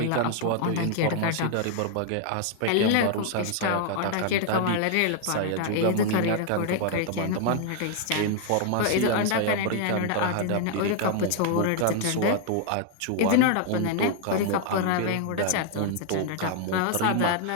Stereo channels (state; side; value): different; both; correlation 0.00